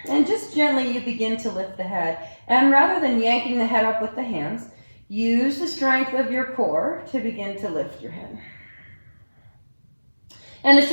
And just gently you begin to lift the head. And rather than yanking the head up with the hands, use the strength of your core to begin to lift your head. And the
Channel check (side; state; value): both; inverted; correlation -1.00